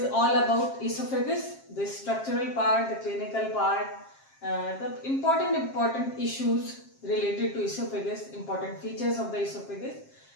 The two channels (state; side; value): late; right; 7.5 ms